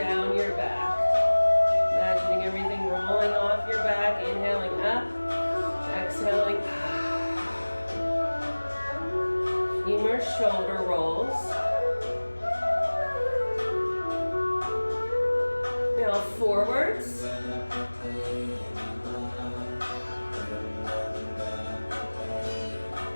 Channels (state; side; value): inverted; both; correlation -1.00